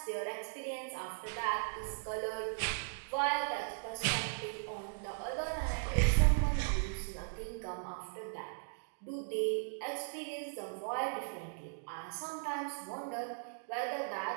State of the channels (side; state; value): left; silent; digital silence